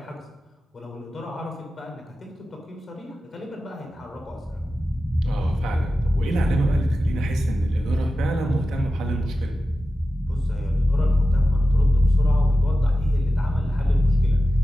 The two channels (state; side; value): normal; both; correlation 0.93